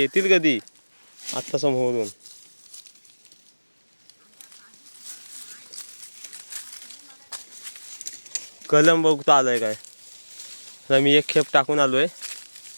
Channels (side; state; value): both; inverted; correlation -1.00